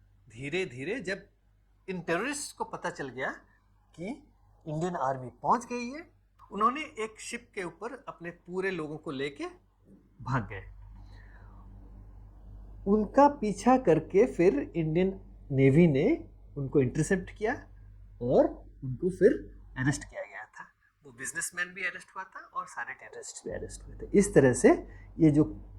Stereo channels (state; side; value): identical; both; correlation 1.00